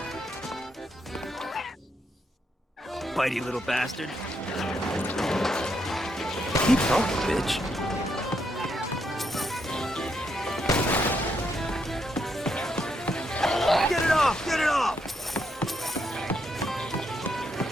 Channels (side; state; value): both; normal; correlation 0.78